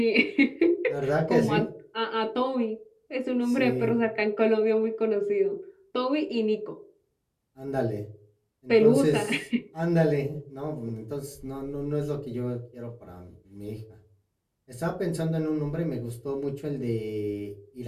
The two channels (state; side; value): identical; both; correlation 1.00